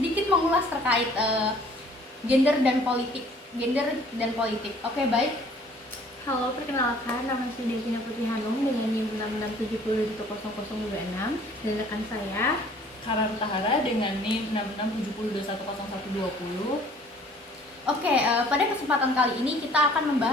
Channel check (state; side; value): normal; both; correlation 0.55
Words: mengulas terkait gender dan politik. Oke, baik. Halo, perkenalkan, nama saya Devina Putri Hanum dengan NIM 6670100026 dan rekan saya Karan Tahara dengan NIM 6670210120. Oke, pada kesempatan kali ini kita akan